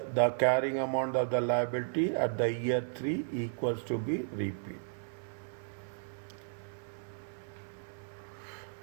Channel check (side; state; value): left; silent; 55 dB below the other